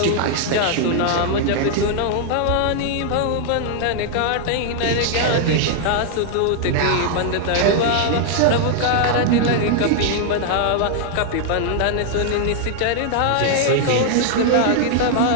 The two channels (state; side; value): different; both; correlation 0.00